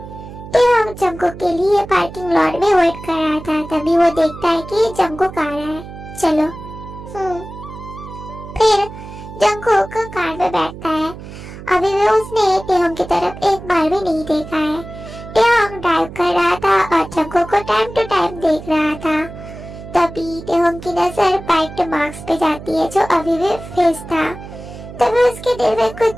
टेहोंग जंगकुक के लिए पार्किंग लॉट में वेट कर रहा था, तभी वो देखता है कि जंगकुक आ रहा है। चलो। फिर जंगकुक कार में बैठता है। अभी भी उसने टेहोंग की तरफ एक बार भी नहीं देखा है। टेहोंग ड्राइव कर रहा था और जंगकुक को टाइम टू टाइम देख रहा था। तभी टेहोंग की नजर बाइट मार्क्स पे जाती है जो अभी भी फेस था। तभी उसके दिल में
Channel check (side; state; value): right; noise; hum, 13 dB below the sound